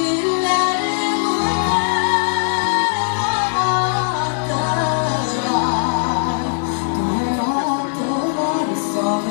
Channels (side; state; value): right; silent; digital silence